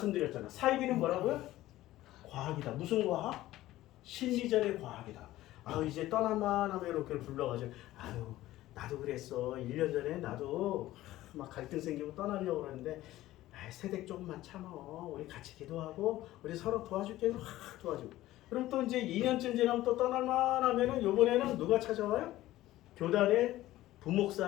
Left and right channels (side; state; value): right; quieter; 15.7 dB